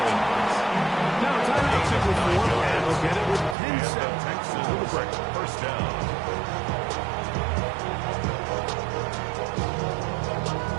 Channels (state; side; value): drops out; left; at 3.6 s